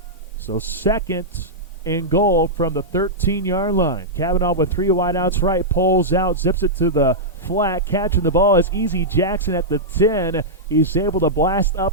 So 2nd and goal from the 13-yard line. Kavanaugh with 3 wideouts right, pulls out, zips it to the flat. Catching the ball is Easy Jackson at the 10. He's able to blast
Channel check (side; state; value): both; normal; correlation -0.10